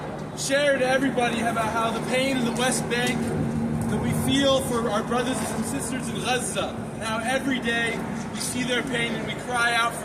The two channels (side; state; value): both; identical; correlation 1.00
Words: share to everybody about how the pain in the West Bank that we feel for our brothers and sisters in Gaza, and how every day we see their pain and we cry out